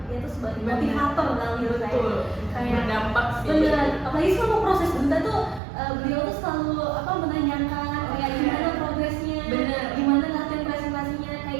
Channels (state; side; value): drops out; left; at 5.6 s